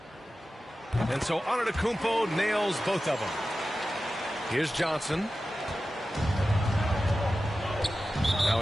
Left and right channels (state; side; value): normal; both; correlation 0.94